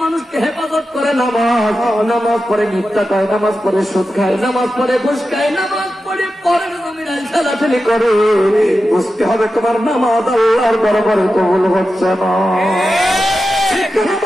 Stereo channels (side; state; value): both; normal; correlation 0.91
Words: মানুষকে হেফাজত করে নামাজ, নামাজ পড়ে মিথ্যা খায়, নামাজ পড়ে সুদ খায়, নামাজ পড়ে ঘুষ খায়, নামাজ পড়ে পরের জমিনে ঠেলাঠেলি করে। বুঝতে হবে তোমার নামাজ আল্লাহর দরবারে কবুল হচ্ছে না।